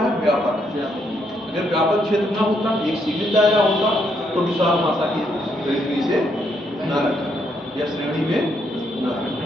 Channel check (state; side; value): normal; both; correlation 0.75